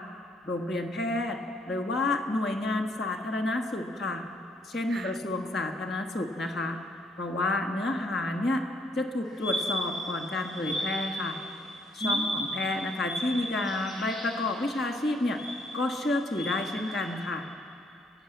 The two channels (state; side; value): normal; both; correlation 0.69